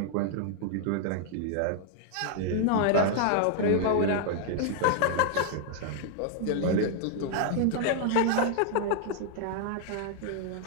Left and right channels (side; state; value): both; different; correlation 0.00